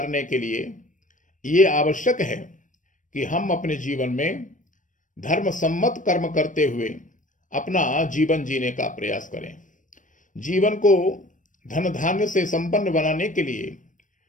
के लिए ये आवश्यक है कि हम अपने जीवन में धर्म सम्मत कर्म करते हुए अपना जीवन जीने का प्रयास करें। जीवन को धन धान्य से संपन्न बनाने के लिए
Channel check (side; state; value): right; late; 0.37 ms